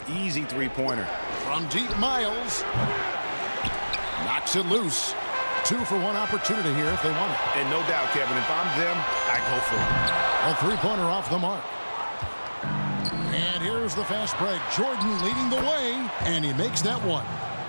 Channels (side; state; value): both; inverted; correlation -1.00